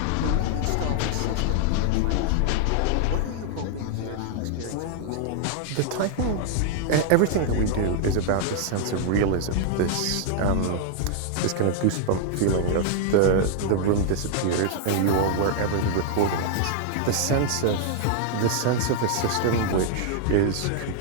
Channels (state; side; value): different; both; correlation 0.00